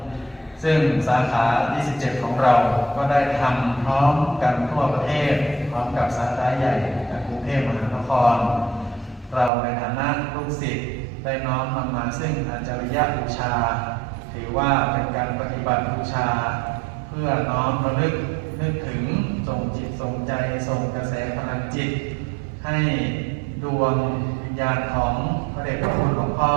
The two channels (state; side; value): drops out; left; at 9.5 s